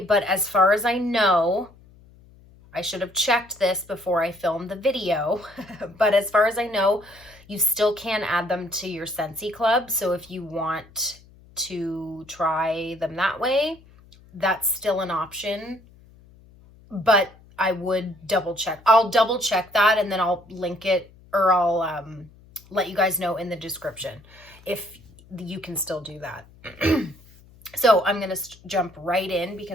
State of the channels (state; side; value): noise; left; hum, 25 dB below the sound